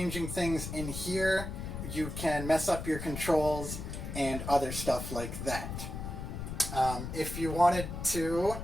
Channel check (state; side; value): noise; left; rumble, 6 dB below the sound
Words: things in here, you can mess up your controls and other stuff like that. If you wanted to